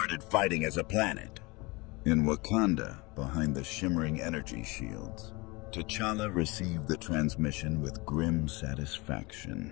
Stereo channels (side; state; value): right; quieter; 25.4 dB